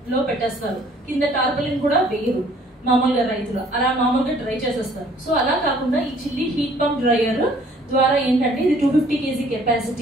పెట్టేస్తారు, కింద టార్పలిన్ కూడా వేయరు మామూలుగా రైతులు, అలా మామూలుగా డ్రై చేసేస్తారు. సో అలా కాకుండా ఈ చిల్లీ హీట్ పంప్ డ్రైయర్ ద్వారా ఏంటంటే ఇది 250 kg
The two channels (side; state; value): both; normal; correlation 0.58